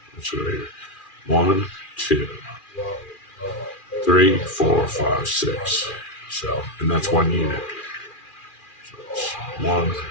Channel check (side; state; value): right; late; 2.4 ms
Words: It's right here. 1, 2, 3, 4, 5, 6. So, and that's 1 unit. So it's 1,